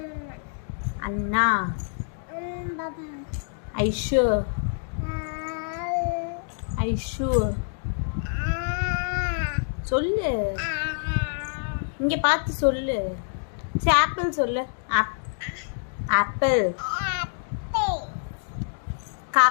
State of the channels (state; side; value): silent; right; digital silence